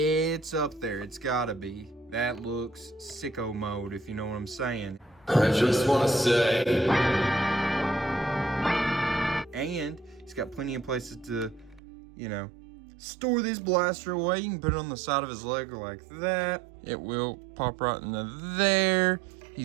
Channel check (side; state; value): left; drops out; at 11.8 s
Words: it's up there. It's gotta be. That looks sicko mode, if you know what I'm saying. I just want to say... And he's got plenty of places to, you know, store this blaster away. You can put it on the side of his leg like that. It will pop right into there.